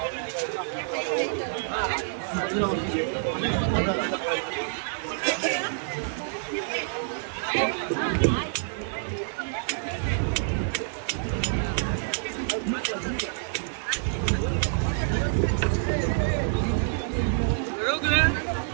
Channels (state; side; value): silent; left; digital silence